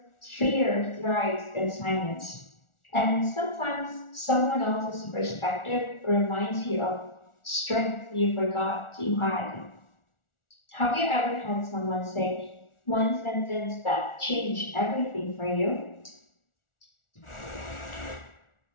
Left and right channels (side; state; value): right; late; 1.4 ms